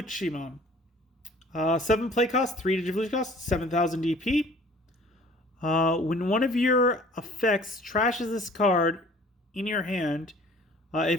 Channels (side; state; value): both; normal; correlation 0.51